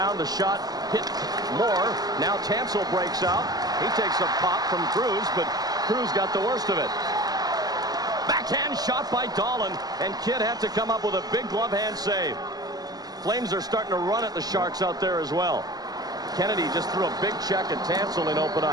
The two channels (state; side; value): late; left; 0.19 ms